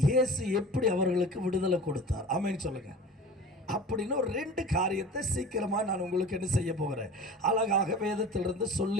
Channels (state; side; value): normal; both; correlation 0.38